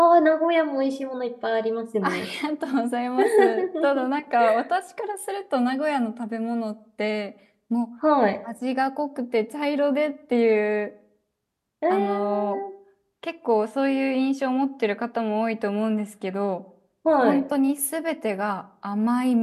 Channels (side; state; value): both; identical; correlation 1.00